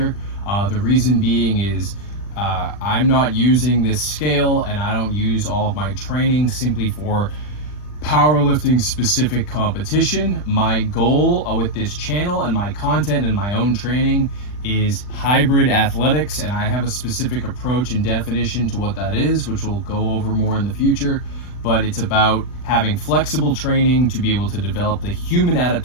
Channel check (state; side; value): late; right; 40 ms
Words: The reason being is I'm not using this scale, and I don't use all of my training simply for powerlifting specific competition. My goal with this channel and my content and my own training is hybrid athletics, and I have a specific approach and definition to what that is, which we'll go over more in the future. But it's about having flexible training to be able to develop the human